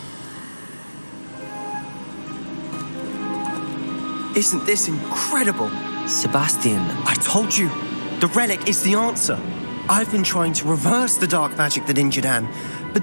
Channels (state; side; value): inverted; both; correlation -1.00